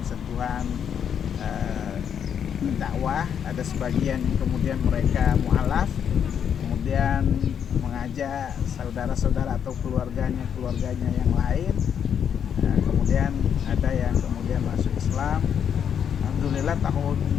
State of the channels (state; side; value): quieter; right; 8.2 dB